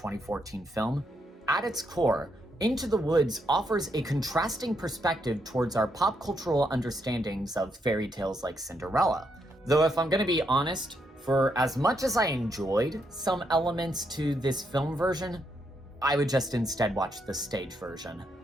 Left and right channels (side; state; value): both; normal; correlation 0.78